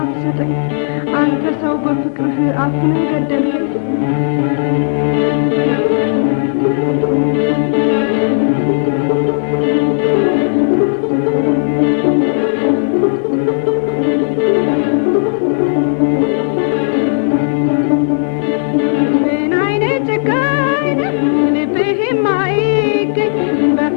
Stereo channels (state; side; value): silent; right; 60 dB below the other